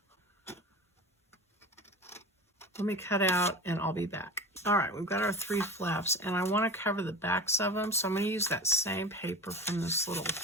cut out, and I'll be back. All right, we've got our 3 flaps, and I want to cover the backs of them, so I'm going to use that same paper from this little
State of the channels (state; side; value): normal; both; correlation 0.32